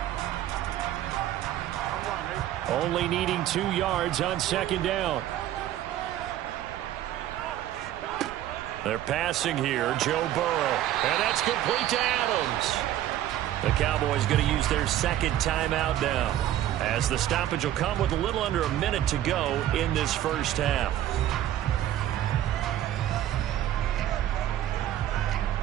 Only needing 2 yards on second down. They're passing here, Joe Burrow. And that's complete to Adams. The Cowboys going to use their second timeout now, as the stoppage will come with a little under a minute to go in this first half.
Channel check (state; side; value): quieter; left; 12.5 dB